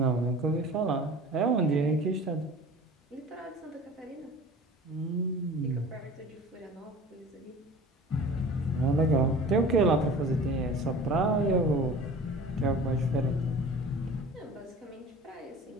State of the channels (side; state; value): both; normal; correlation 0.41